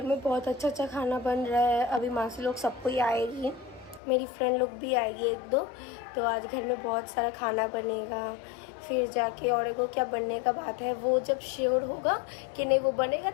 में बहुत अच्छा खाना बन रहा है। अभी मासी लोग सबको ही आएगी, मेरी फ्रेंड लोग भी आएगी एक दो। तो आज घर में बहुत सारा खाना बनेगा। फिर जाके और एगो क्या बनने का बात है, वो जब श्योर होगा कि नहीं वो बनेगा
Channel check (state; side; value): drops out; right; at 4.0 s